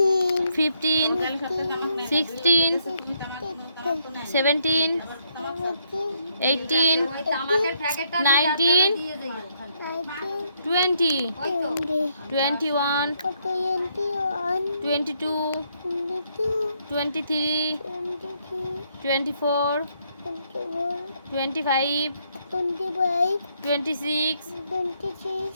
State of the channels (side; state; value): both; inverted; correlation -0.73